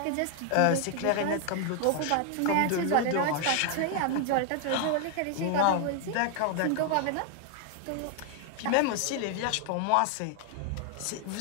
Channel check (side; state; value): both; different; correlation 0.00